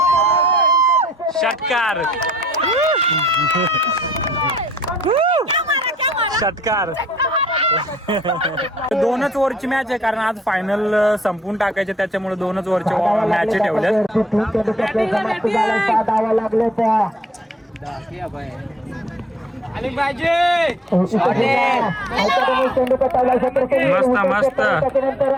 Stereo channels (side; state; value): both; normal; correlation 0.64